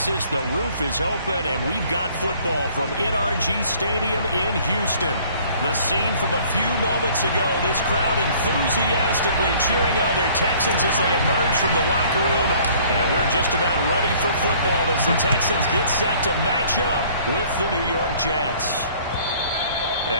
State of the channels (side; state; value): both; inverted; correlation -0.55